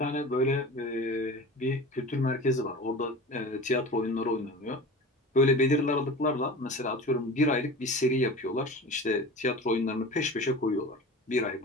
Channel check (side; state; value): both; normal; correlation 0.35